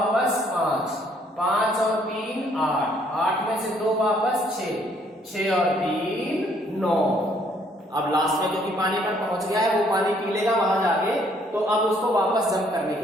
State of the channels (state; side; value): normal; both; correlation 0.65